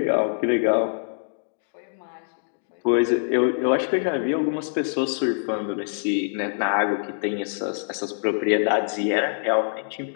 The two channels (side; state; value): right; silent; digital silence